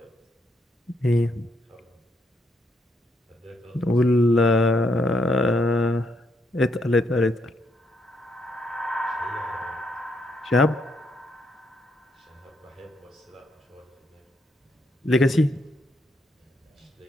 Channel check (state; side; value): normal; both; correlation 0.76